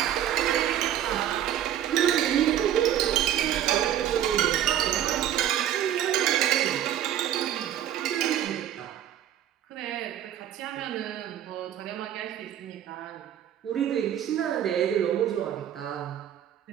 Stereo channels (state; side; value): quieter; left; 10.9 dB